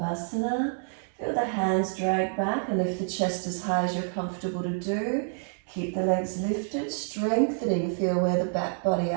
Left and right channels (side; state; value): left; silent; 59 dB below the other